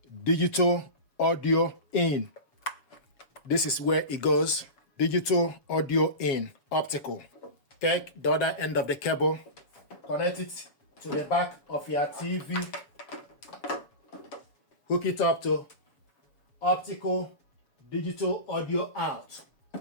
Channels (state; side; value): late; right; 7.1 ms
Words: digital audio in. This is where it goes. Digital audio in, optical. Take the other end of the cable, connect it to the back of your TV, hook it up to optical digital audio out.